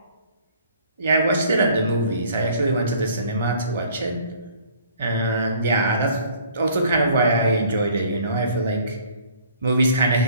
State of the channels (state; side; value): inverted; both; correlation -0.55